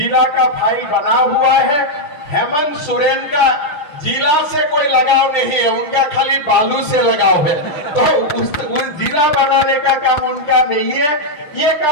का फाइल बना हुआ है। हेमंत सोरेन का जिला से कोई लगाव नहीं है, उनका खाली बालू से लगाव है, तो उस जिला बनाने का काम उनका नहीं है, ये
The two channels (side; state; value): right; late; 6.7 ms